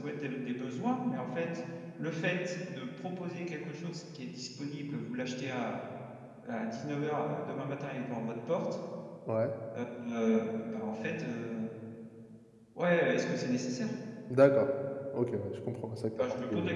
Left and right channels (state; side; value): identical; both; correlation 1.00